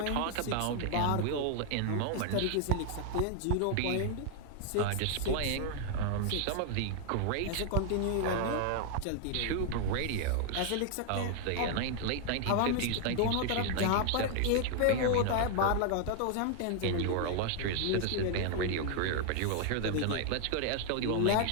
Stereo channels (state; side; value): different; both; correlation 0.00